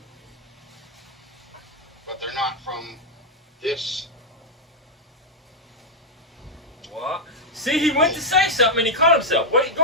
But they're not from this. What? See, he went to say something and he caught himself. What? Go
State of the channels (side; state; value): both; normal; correlation -0.02